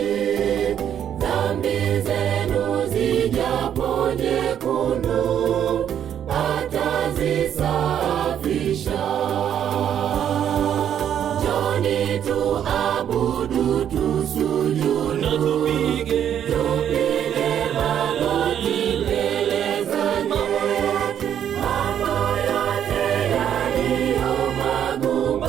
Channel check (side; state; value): left; quieter; 9.6 dB